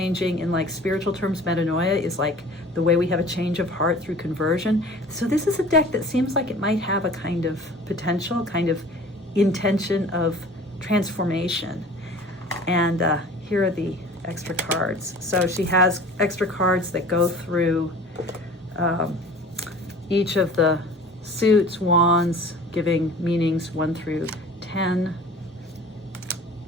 in like spiritual terms, metanoia is like the way we have a change of heart through conversion. So this is a deck that seems like it might have a kind of potential, kind of intention of transformation. And here are the extra cards. So she has extra cards that go through each of the suits, wands, giving meanings 1 through 10.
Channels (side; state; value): both; normal; correlation 0.44